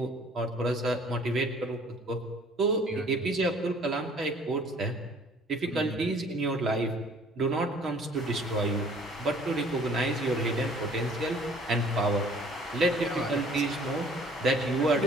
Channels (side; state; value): both; normal; correlation 0.54